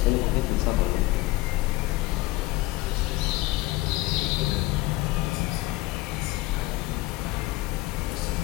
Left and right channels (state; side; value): quieter; right; 19.2 dB